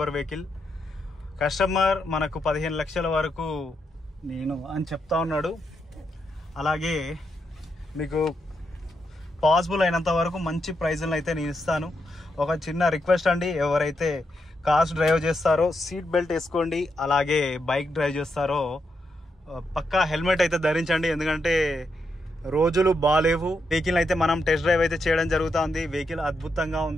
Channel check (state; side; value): normal; both; correlation 0.82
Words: వెహికల్. కస్టమర్ మనకు 15 లక్షల వరకు నేను అని చెప్తా ఉన్నాడు. అలాగే మీకు పాసిబుల్ అయినంత వరకు మంచి ప్రైజ్లను అయితే నేను ఇస్తాను. ఒక చిన్న రిక్వెస్ట్ అండి, ఎవరైతే కార్స్ డ్రైవ్ చేస్తారో సీట్ బెల్ట్ వేసుకోండి. అలాగే బైక్ డ్రైవ్ చేస్తారో పక్కా హెల్మెట్ అయితే ధరించండి, ఎందుకంటే రోజులు బాగాలేవు. వెహికల్ అయితే మనం టెస్ట్ డ్రైవ్ అయితే చేయడం జరుగుతుంది. వెహికల్ అద్భుతంగా